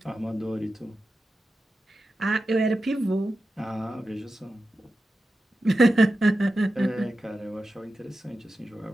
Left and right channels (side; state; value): both; normal; correlation 0.92